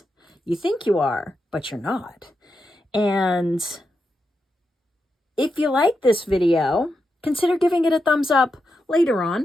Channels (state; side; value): normal; both; correlation 0.87